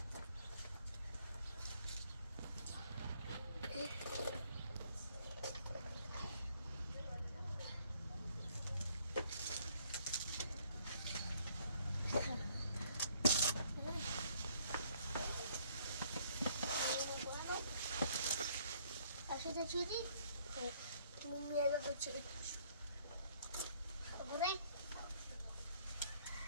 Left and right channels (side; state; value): both; inverted; correlation -0.64